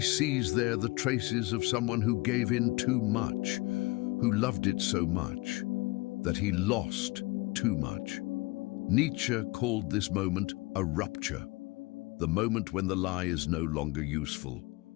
sees there the traces of someone who gave in too much, who loved it so much that he lost too much. Nietzsche called this moment a rupture, the moment when the lie is no longer useful,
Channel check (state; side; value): quieter; right; 23.4 dB